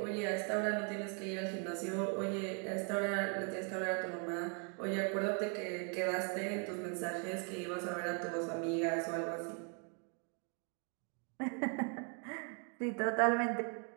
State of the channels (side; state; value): left; quieter; 39.0 dB